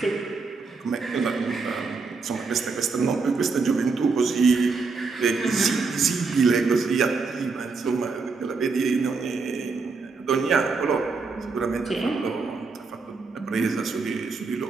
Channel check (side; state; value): left; quieter; 4.5 dB